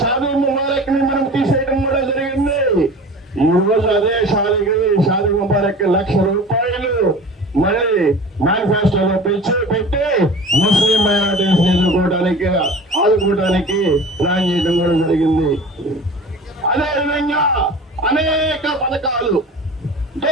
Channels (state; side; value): normal; both; correlation 0.39